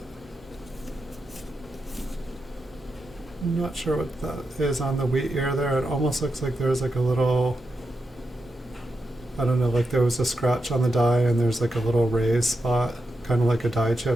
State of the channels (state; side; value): normal; both; correlation 0.87